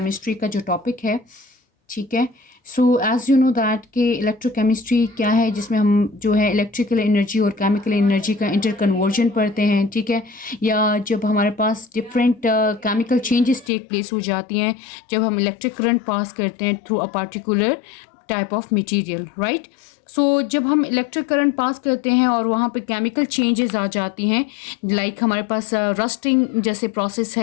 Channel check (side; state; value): right; drops out; at 13.7 s